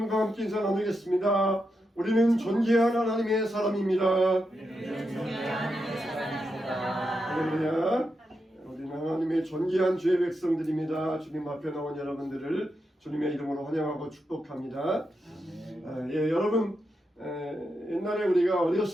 함께 인사 나누겠습니다. 우리는 존귀한 하나님의 사람입니다. 할렐루야. 우리는 하나님의 존귀한 주의 백성들입니다. 주님 앞에 나온 여러분들을 주님의 이름으로 환영하고 축복합니다. 여러분, 옛날에 우리가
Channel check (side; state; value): both; normal; correlation 0.86